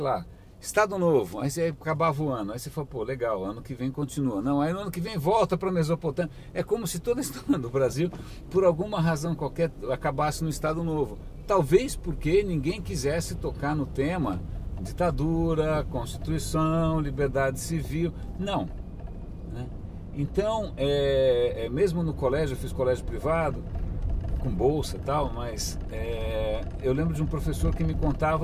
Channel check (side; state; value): both; identical; correlation 1.00